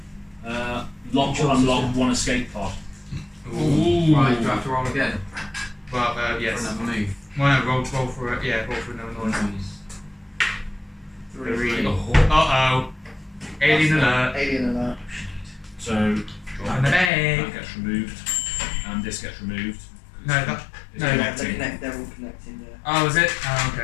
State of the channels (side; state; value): right; drops out; at 17.1 s